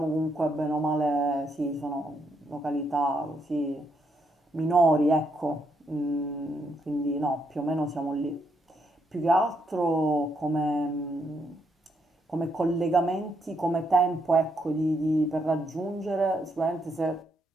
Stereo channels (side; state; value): both; normal; correlation 0.77